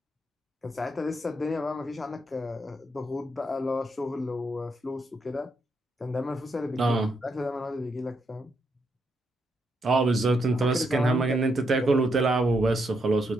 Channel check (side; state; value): both; normal; correlation 0.79